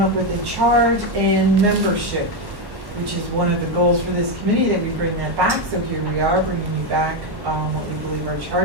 up with a charge and membership, which is one of the goals for this committee, that we bring that back. So here we are, bringing you back what we believe our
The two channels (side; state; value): left; late; 1.1 ms